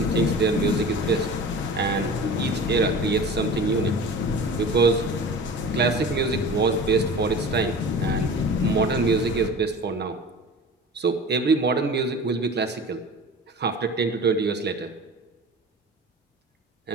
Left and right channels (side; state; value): both; normal; correlation 0.37